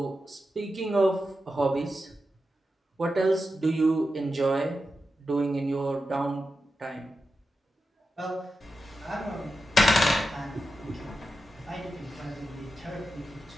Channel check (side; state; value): both; normal; correlation 0.90